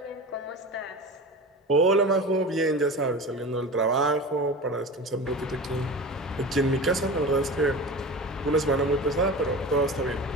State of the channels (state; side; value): normal; both; correlation 0.32